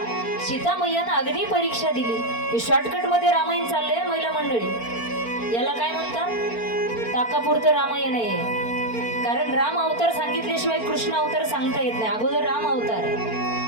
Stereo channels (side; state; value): right; late; 4.4 ms